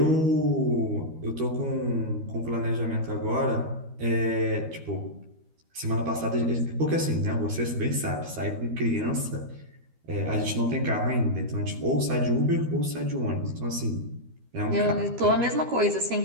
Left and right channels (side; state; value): left; late; 13 ms